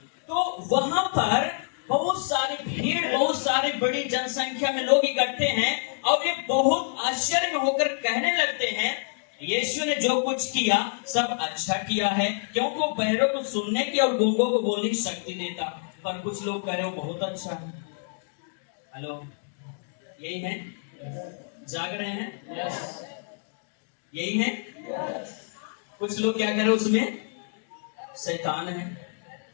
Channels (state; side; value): silent; right; digital silence